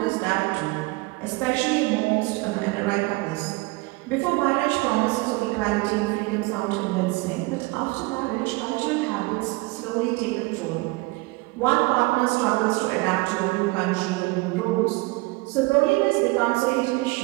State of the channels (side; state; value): left; quieter; 24.2 dB